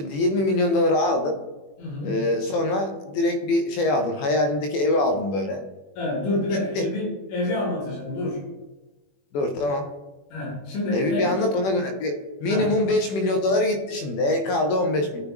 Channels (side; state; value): right; late; 21 ms